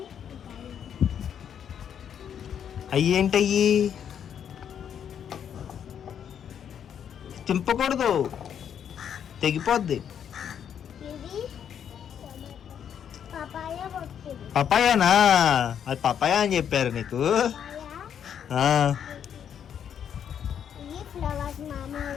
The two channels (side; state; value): right; quieter; 8.6 dB